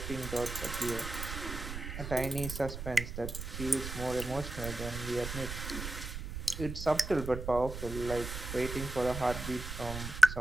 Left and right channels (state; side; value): noise; right; rumble, 7 dB below the sound